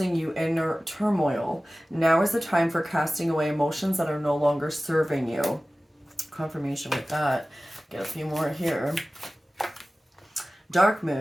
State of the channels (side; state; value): both; normal; correlation 0.97